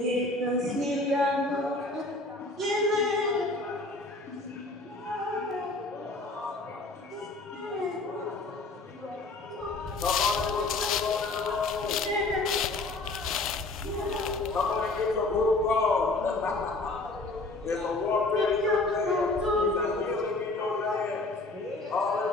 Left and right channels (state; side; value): quieter; right; 3.1 dB